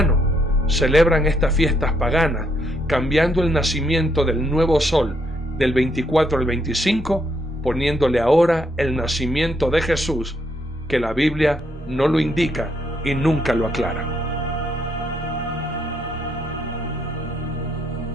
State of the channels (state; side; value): normal; both; correlation 0.74